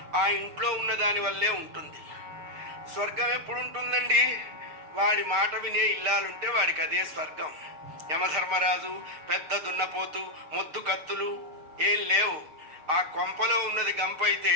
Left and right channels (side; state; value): left; late; 6.6 ms